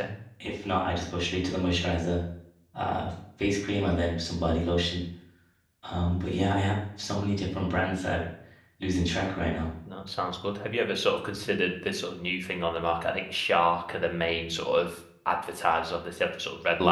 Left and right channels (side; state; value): both; identical; correlation 1.00